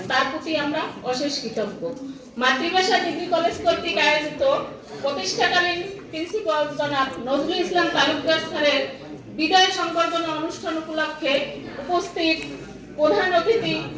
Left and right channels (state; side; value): identical; both; correlation 1.00